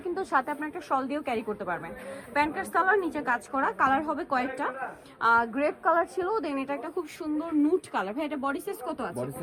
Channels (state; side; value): identical; both; correlation 1.00